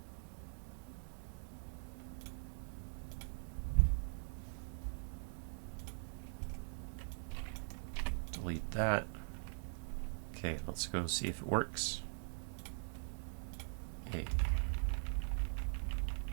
Delete that. Okay, let's go see if it works. Hey.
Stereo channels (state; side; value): silent; left; digital silence